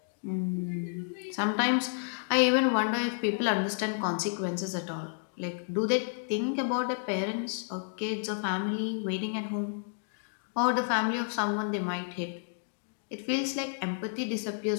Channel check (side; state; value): right; silent; digital silence